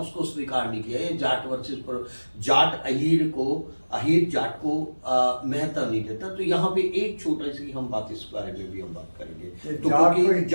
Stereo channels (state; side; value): inverted; both; correlation -1.00